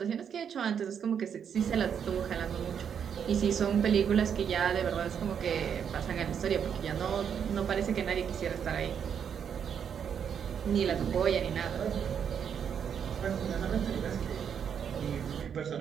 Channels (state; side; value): quieter; left; 7.8 dB